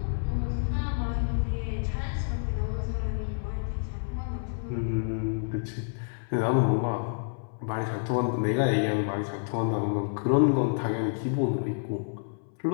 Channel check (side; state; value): right; silent; 58 dB below the other